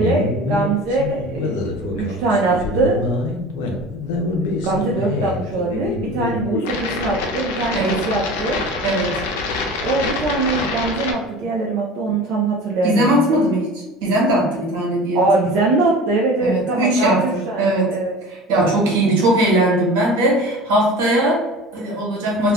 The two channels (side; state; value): both; normal; correlation 0.37